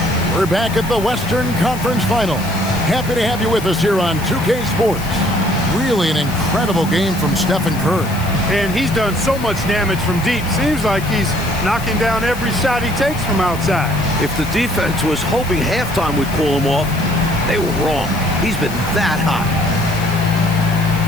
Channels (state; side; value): noise; left; hiss, 15 dB below the sound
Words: We're back at the Western Conference Final. Happy to have you with us here on 2K Sports. Really an incredible game from Stephen Curry. And he's done so much damage from deep. Seems like he's knocking down every shot he takes from outside. If the defense was hoping halftime would pull him off, they were wrong. He's been that hot.